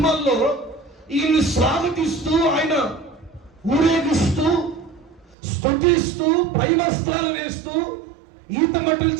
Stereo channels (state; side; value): drops out; left; at 5.4 s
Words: ఈయన్ని స్వాగతిస్తూ, ఆయన ఊరేగిస్తూ, స్తుతిస్తూ, పై వస్త్రాలు వేస్తూ, ఈతమట్టుల